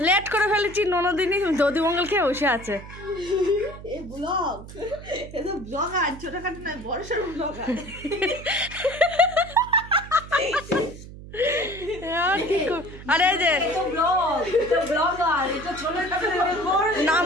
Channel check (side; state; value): right; noise; hum, 15 dB below the sound